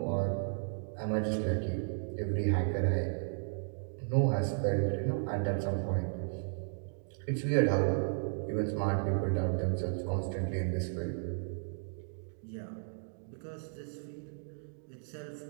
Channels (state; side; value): silent; left; digital silence